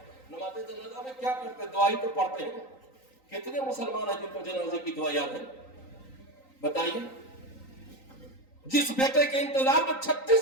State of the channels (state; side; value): late; right; 3.9 ms